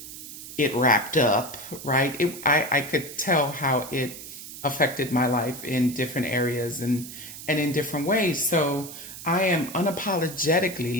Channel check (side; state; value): right; noise; hiss, 12 dB below the sound